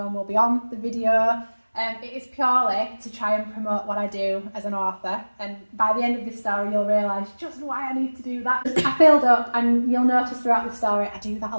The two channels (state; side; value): inverted; both; correlation -1.00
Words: will be on the video. It is purely to try and promote what I do as an author, and by the end of this story you'll realise just why I need to do that. I filled up, and you'll notice throughout the story I do that a